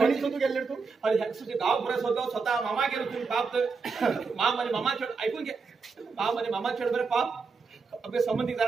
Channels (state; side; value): quieter; left; 4.7 dB